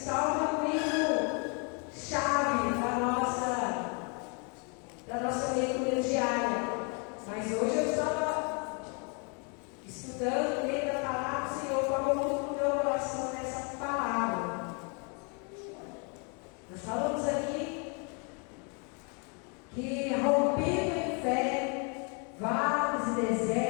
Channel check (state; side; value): quieter; right; 36.0 dB